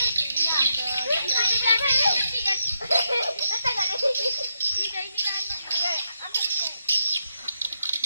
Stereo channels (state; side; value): inverted; both; correlation -0.82